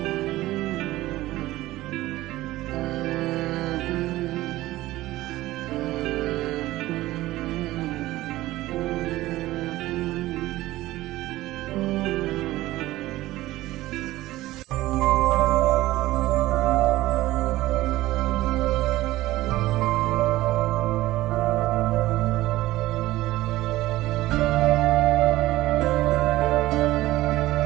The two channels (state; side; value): quieter; left; 16.8 dB